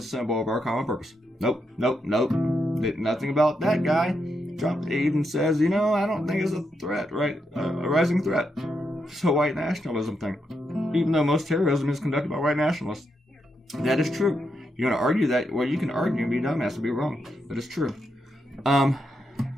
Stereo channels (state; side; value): normal; both; correlation 0.82